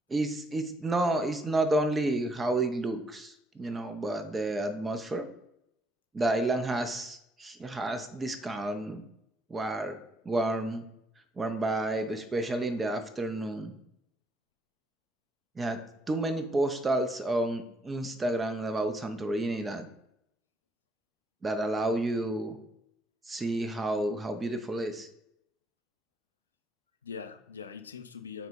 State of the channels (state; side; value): normal; both; correlation 0.72